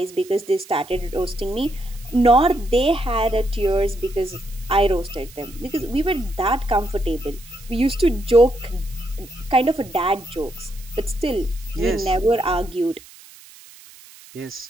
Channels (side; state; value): right; noise; hiss, 21 dB below the sound